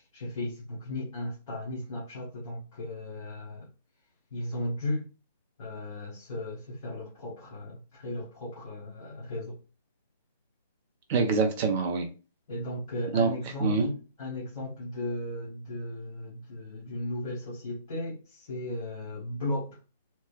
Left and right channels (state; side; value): inverted; both; correlation -0.48